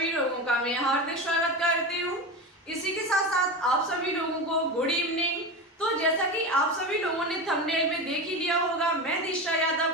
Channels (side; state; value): both; normal; correlation 0.23